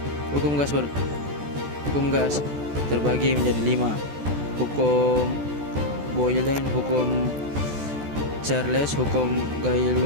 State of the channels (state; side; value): late; left; 14 ms